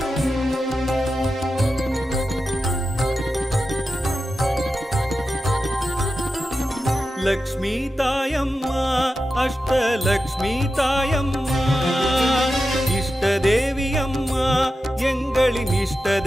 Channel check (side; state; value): both; normal; correlation 0.91